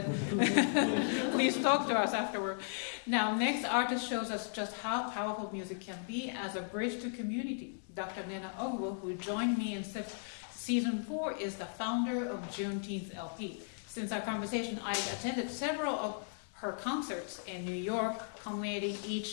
please talk to us afterward. Now, next artist shows us just how powerful music can be as a bridge to community. Dr. Nnenna Ogwo, who joined me in season 4, is the founder of Juneteenth LP. Since our conversation, I've attended several of her concerts in New York, culminating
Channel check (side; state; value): right; silent; 54 dB below the other